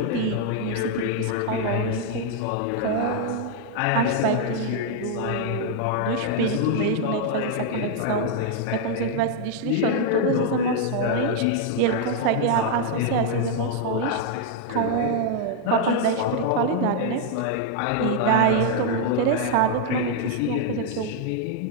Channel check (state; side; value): different; both; correlation 0.00